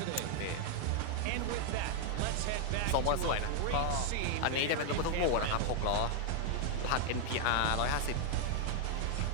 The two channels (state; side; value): different; both; correlation 0.00